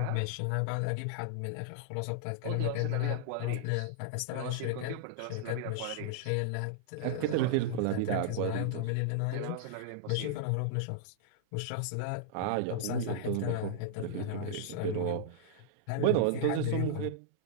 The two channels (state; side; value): different; both; correlation -0.01